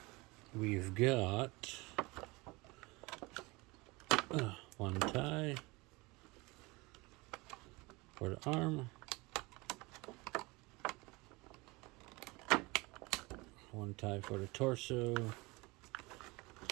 We've got one tie for the arm, one tie for the torso,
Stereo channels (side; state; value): left; quieter; 24.2 dB